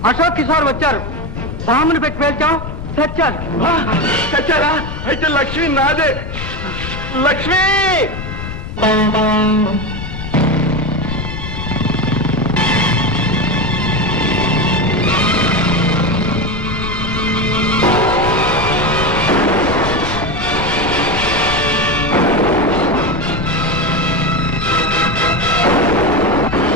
అశోక్ కిషోర్ వచ్చారు. బాంబుని పెట్టి పేల్చాం, చచ్చారు. చచ్చారా? అయితే లక్ష్మి నాదే. Lakshmi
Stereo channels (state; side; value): noise; left; rumble, 8 dB below the sound